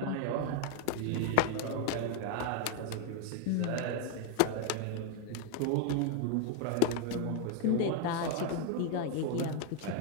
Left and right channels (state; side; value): different; both; correlation 0.00